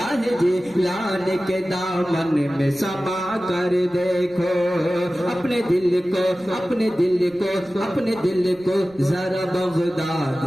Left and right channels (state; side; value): noise; right; rumble, 27 dB below the sound